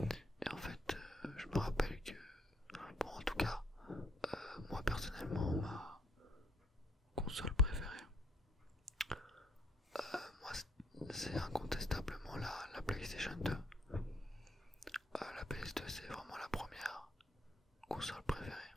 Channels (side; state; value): both; normal; correlation 0.68